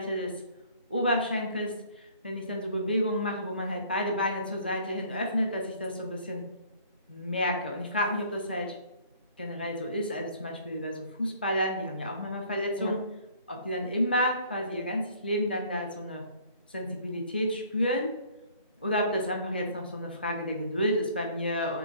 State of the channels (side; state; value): both; inverted; correlation -0.55